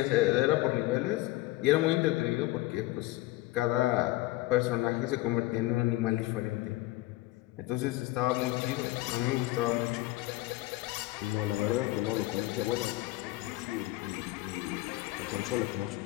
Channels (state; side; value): quieter; right; 18.3 dB